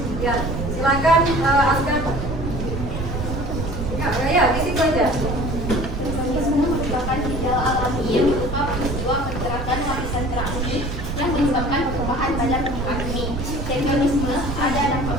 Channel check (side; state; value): right; noise; rumble, 4 dB below the sound